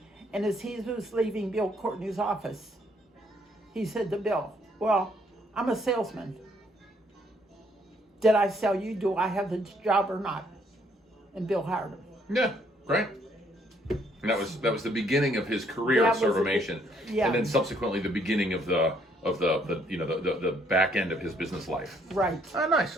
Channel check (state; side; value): normal; both; correlation 0.67